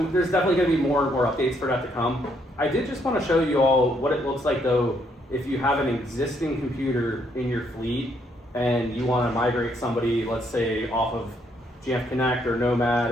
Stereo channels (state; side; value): normal; both; correlation 0.72